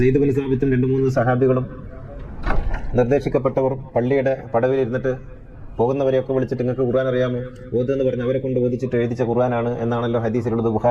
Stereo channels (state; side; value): identical; both; correlation 1.00